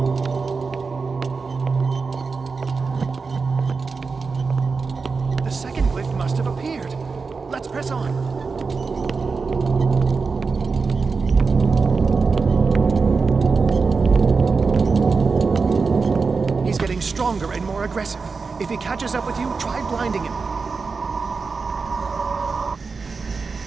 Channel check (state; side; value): quieter; left; 4.7 dB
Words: The second glyph must have appeared. Let's press on. He's getting stronger and more aggressive. If he catches up with you, try blinding him.